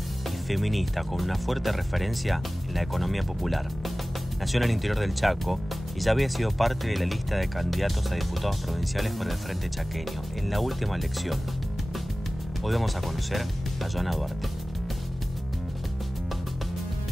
feminista con una fuerte referencia en la economía popular. Nació en el interior del Chaco y ya había sido parte de la lista de candidatos a diputados provinciales por el Frente Chaqueño en la última elección. Hoy vamos a conocer a Joana Duarte.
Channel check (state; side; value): normal; both; correlation 0.97